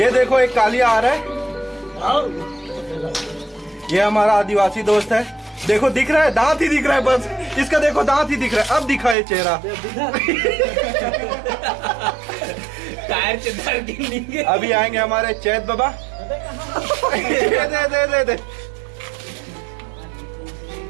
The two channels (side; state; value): left; drops out; at 9.2 s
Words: देखो एक कालिया आ रहा है ये हमारा आदिवासी दोस्त है देखो दिख रहा है, दांत ही दिख रहा है बस। इसका देखो दांत ही दिख रहा है, अब दिखा है चेहरा। टायर चंदर के अभी आएंगे हमारे चैत बाबा। दे